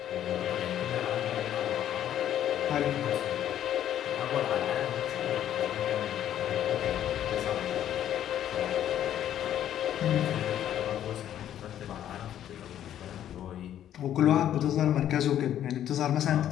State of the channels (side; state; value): right; quieter; 10.9 dB